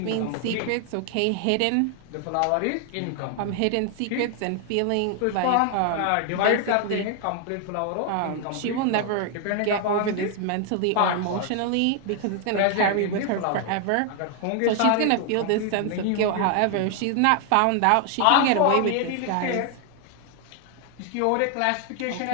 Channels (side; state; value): both; different; correlation 0.00